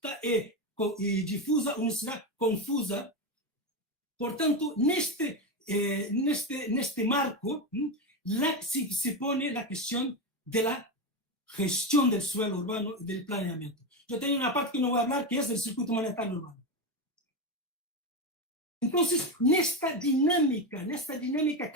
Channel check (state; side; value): normal; both; correlation 0.14